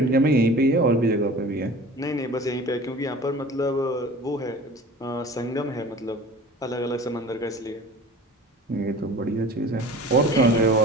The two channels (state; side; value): normal; both; correlation 0.41